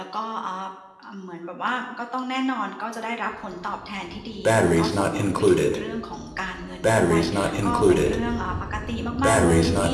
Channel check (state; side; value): identical; both; correlation 1.00